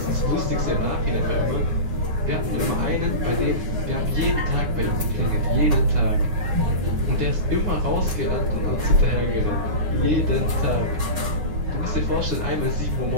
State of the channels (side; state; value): left; late; 9.7 ms